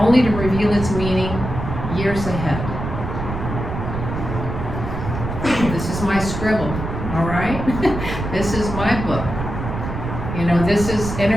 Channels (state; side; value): noise; right; rumble, 6 dB below the sound